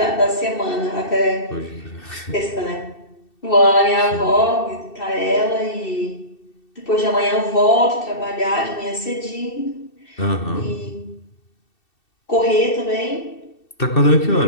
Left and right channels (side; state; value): right; late; 2.7 ms